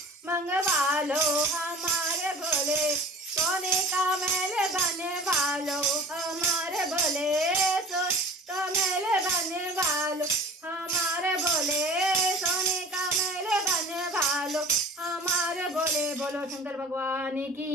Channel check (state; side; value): normal; both; correlation 0.41